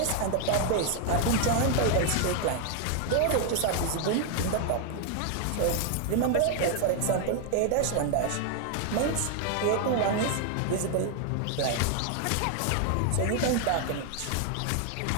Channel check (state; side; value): different; both; correlation 0.00